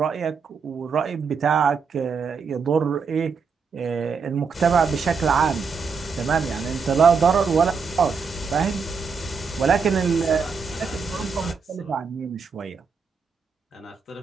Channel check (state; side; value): quieter; left; 5.5 dB